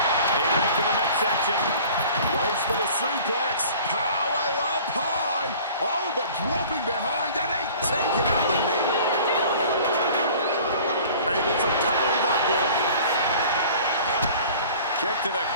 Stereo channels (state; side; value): inverted; both; correlation -0.46